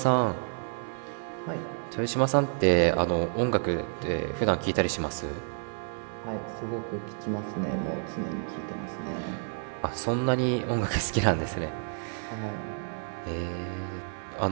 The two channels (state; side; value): silent; left; 58 dB below the other